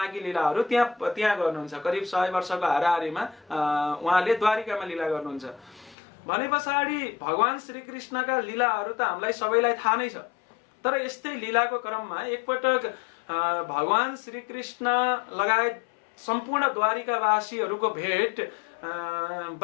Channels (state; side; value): drops out; right; at 6.0 s